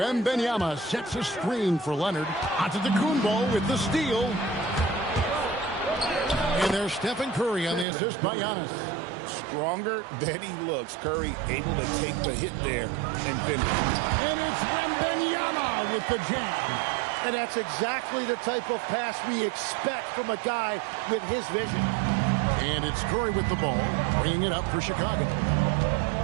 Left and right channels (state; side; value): drops out; left; at 7.9 s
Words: sets a screen for Leonard. Antetokounmpo with the steal. And there's Stephen Curry on the assist by Giannis. Stronger than he looks. Curry able to take the hit there and finish. And it's Wembanyama with the jam. And that's exactly the type of pass we expect from a guy with his vision. And it's Curry with the ball, bringing it up for Chicago.